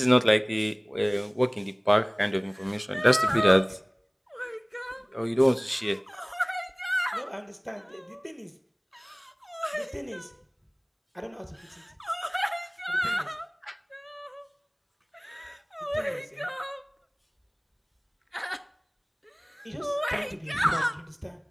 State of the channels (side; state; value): both; identical; correlation 1.00